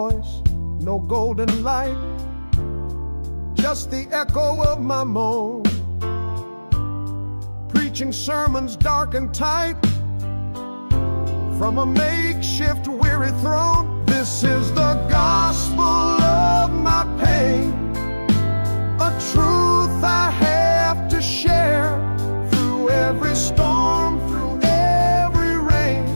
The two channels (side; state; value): both; inverted; correlation -1.00